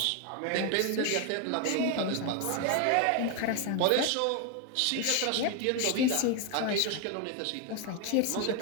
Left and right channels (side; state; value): both; different; correlation 0.01